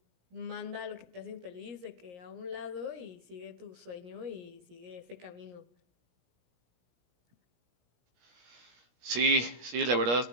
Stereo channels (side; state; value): left; late; 17 ms